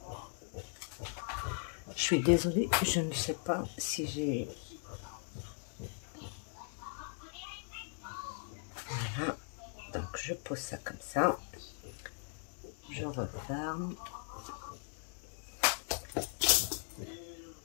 Je suis désolée, je ne sais pas si j'ai... Voilà, donc je pose ça comme ça. Je referme.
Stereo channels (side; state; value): right; silent; 52 dB below the other